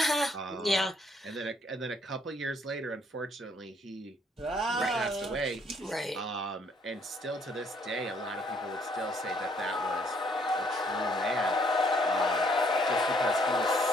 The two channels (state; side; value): normal; both; correlation 0.66